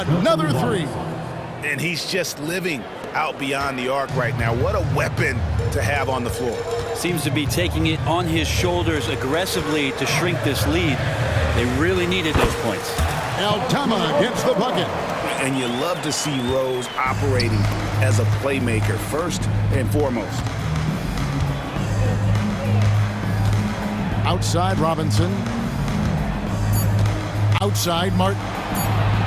3. And he's just living out beyond the arc right now. What a weapon to have on the floor. Seems to be taking it on his shoulders aggressively to shrink this lead. They really needed those points. Altama gets the bucket. And you love to see Rose operating as a playmaker first and foremost. Outside Robinson. Outside Martin.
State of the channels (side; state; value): both; identical; correlation 1.00